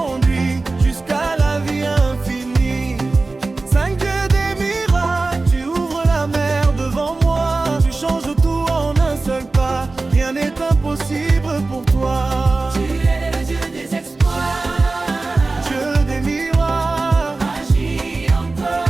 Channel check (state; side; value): quieter; left; 3.5 dB